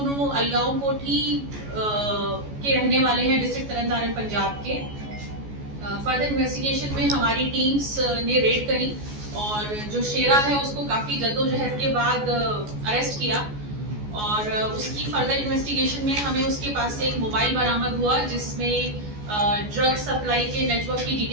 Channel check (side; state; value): left; late; 14 ms